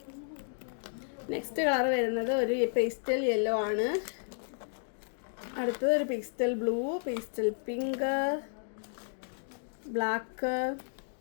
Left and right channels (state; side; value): silent; right; digital silence